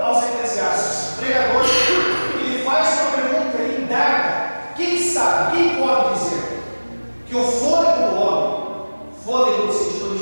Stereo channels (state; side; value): inverted; both; correlation -1.00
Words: aos Eclesiastes, o pregador, ele faz uma pergunta, ele indaga: quem sabe, quem pode dizer que o fôlego do homem, fôlego no sentido